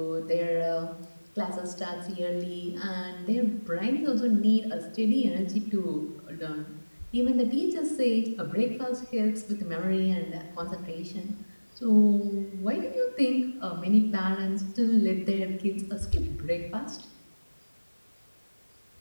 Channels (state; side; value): inverted; both; correlation -1.00